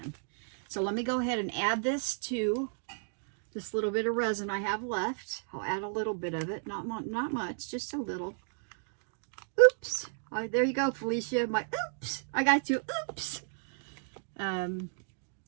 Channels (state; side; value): silent; left; digital silence